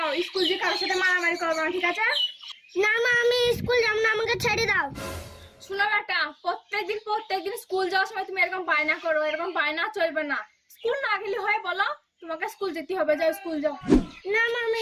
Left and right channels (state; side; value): identical; both; correlation 1.00